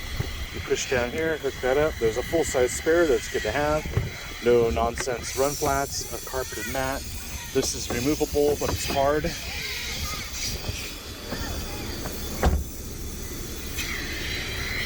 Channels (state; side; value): identical; both; correlation 1.00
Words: push down here, hook that up. There's a full-size spare, that's good to have. No nonsense run flats, a carpeted mat. This is removable, but it's hard.